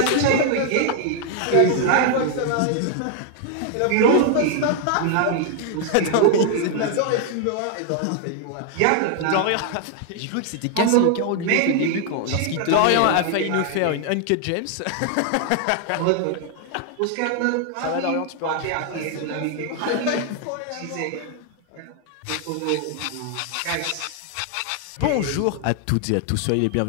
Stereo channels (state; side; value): different; both; correlation 0.00